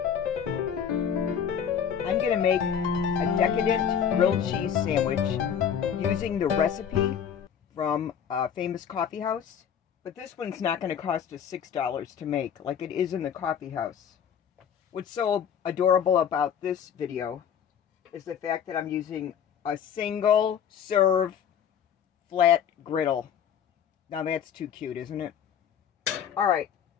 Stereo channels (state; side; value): quieter; right; 8.2 dB